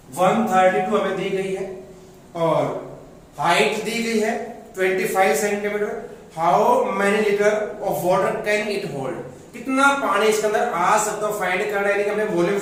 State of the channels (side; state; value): both; identical; correlation 1.00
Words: 132 हमें दी गई है और हाइट दी गई है 25 centimetre. How many litre of water can it hold, कितना पानी इसके अंदर आ सकता है फाइंड करना है, हमें वॉल्यूम